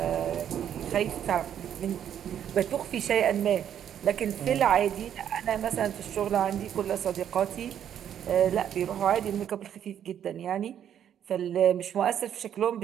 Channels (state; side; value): quieter; left; 9.6 dB